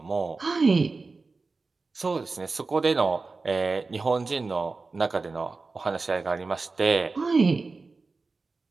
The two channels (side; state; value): left; quieter; 3.9 dB